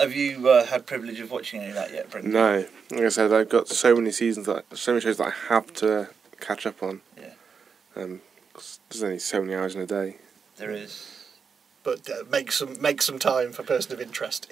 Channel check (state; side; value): quieter; left; 5.9 dB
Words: you had privilege of watching any of that yet, Brendan? No. Like I said, I've got so many shows that I have to catch up on. Yeah. There's only so many hours in a day. There is. But make some time for Person of Interest.